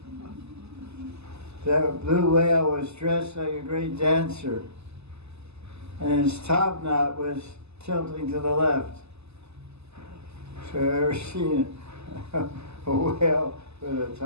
That blue whale was dressed like a great dancer, and his top knot was tilting to the left. So you ever seen a whale with a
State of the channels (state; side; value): late; left; 0.80 ms